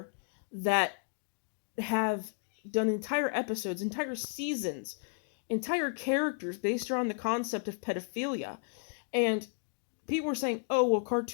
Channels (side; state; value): right; silent; 56 dB below the other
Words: that have done entire episodes, entire seasons, entire characters based around the concept of pedophilia. And people were saying, oh, well,